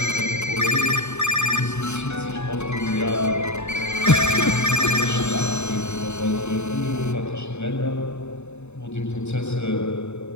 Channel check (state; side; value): late; right; 0.82 ms